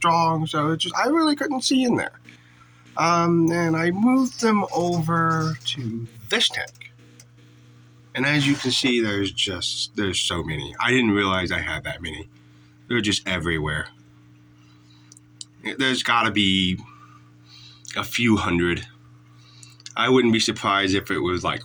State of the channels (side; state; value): both; identical; correlation 1.00